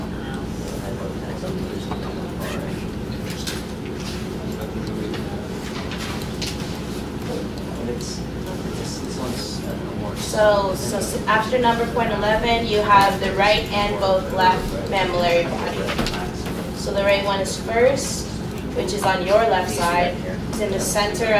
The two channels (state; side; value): identical; both; correlation 1.00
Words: So after number point 11, you have the right and both left mammillary body. So the right one is first, which is on your left side. It's in the center